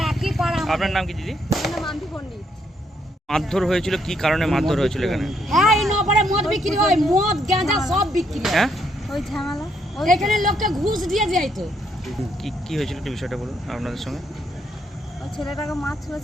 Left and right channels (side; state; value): both; normal; correlation 0.74